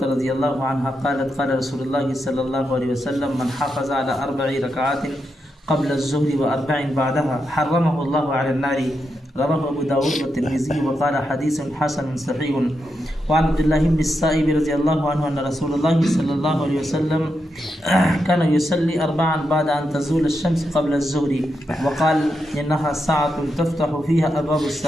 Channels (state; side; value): normal; both; correlation 0.85